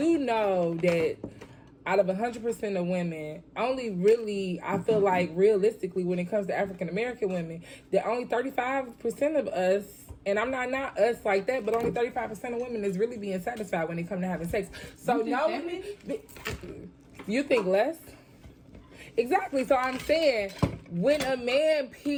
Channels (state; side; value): identical; both; correlation 1.00